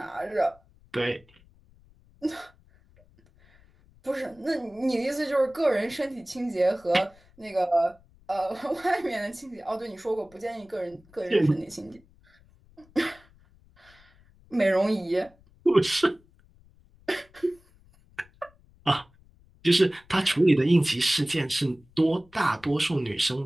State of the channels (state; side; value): noise; left; rumble, 29 dB below the sound